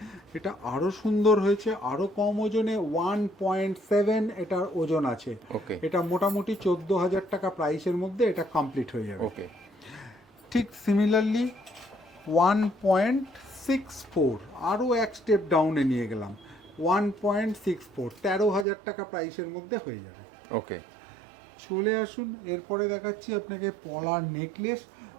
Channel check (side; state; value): left; drops out; at 18.7 s